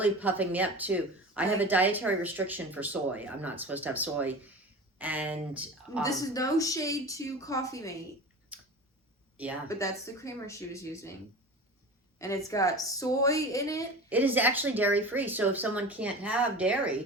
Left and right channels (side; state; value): both; normal; correlation 0.33